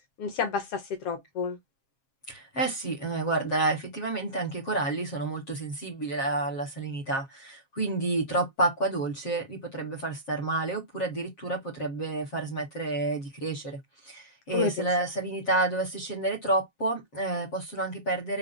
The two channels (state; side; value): late; right; 7.4 ms